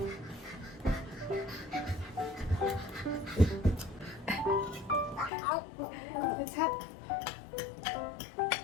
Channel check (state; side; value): drops out; right; at 5.3 s